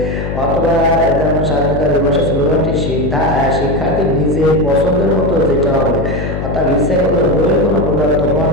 অথবা যেমন স্বাধীনতা দিবসের স্লোগানটি শিক্ষার্থীর নিজের পছন্দের মতো যেটা হবে, অর্থাৎ ইচ্ছে করলে বইয়ের কোনো প্রদত্ত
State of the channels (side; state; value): left; noise; hum, 4 dB below the sound